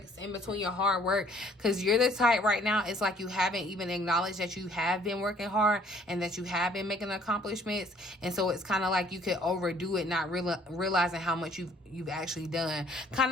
in between your hard work, because you're the type right now, it's like you haven't even acknowledged that you have been working hard and that you have been making accomplishments. And so it's kind of like you could overdo it, not realizing how much you've actually done. Kind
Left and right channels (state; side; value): normal; both; correlation 0.59